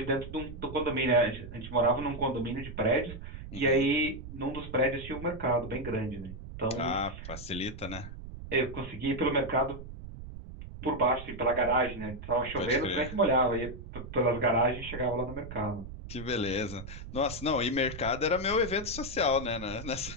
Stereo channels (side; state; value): right; noise; rumble, 11 dB below the sound